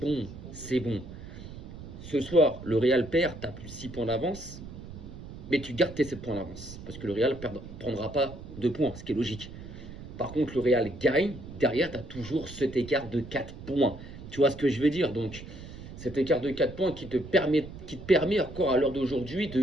c'est bon. Ce soir, le Real perd, tu as plus 6 points d'avance, mais tu gardes tes 7 points d'avance. Parce que le Real ne prendra pas 2 points, ce qui est logique. Par contre, le Real gagne, derrière, tu as toujours cet écart de 4 points. Tu vois ce que je veux dire? Donc, cet écart de 4 points qui te permet encore à l'heure d'aujourd'hui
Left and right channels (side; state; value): right; noise; rumble, 13 dB below the sound